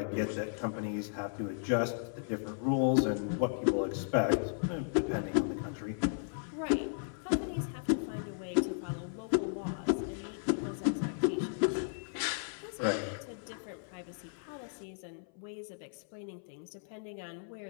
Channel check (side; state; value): right; silent; 54 dB below the other